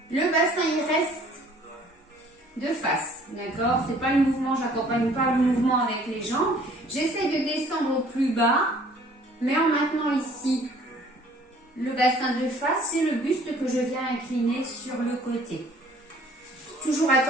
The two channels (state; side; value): normal; both; correlation 0.55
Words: Le bassin, il reste de face, d'accord? C'est pas le mouvement, j'accompagne pas le mouvement avec les jambes. J'essaie de descendre au plus bas, mais en maintenant ici le bassin de face, c'est le buste que je viens incliner sur le côté. Toujours